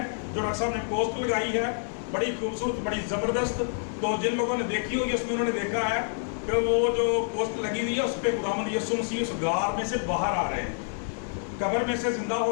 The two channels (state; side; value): silent; right; 57 dB below the other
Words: جو ڈاکٹر صاحب نے پوسٹ لگائی ہے. بڑی خوبصورت، بڑی زبردست. تو جن لوگوں نے دیکھی ہوگی اس میں انہوں نے دیکھا ہے کہ وہ جو پوسٹ لگی ہوئی ہے اس پہ خداوند یسوع مسیح اس غار میں سے باہر آ رہے ہیں، قبر میں سے زندہ